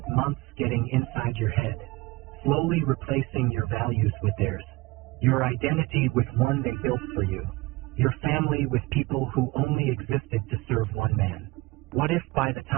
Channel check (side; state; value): left; quieter; 22.1 dB